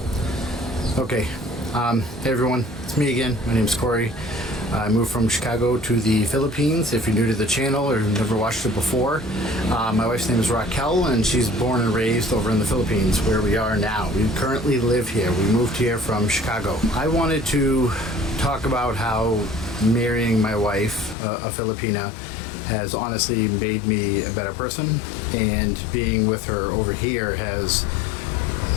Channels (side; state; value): right; drops out; at 21.2 s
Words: Okay, hey everyone, it's me again. My name's Corey. I moved from Chicago to the Philippines. If you're new to the channel or never watched it before, my wife's name is Raquel, and she's born and raised over in the Philippines, where we are now. We currently live here. We moved here from Chicago. I wanted to talk about how marrying my wife, a Filipina, has honestly made me a better person, and being with her over here has